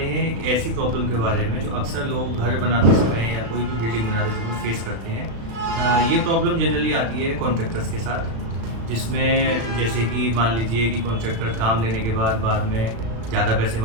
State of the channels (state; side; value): late; left; 36 ms